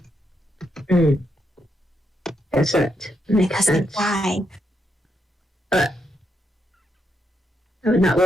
Guess that makes sense. Why? I would not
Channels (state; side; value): normal; both; correlation 0.80